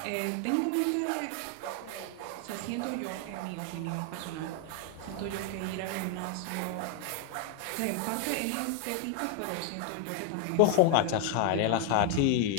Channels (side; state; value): both; different; correlation 0.00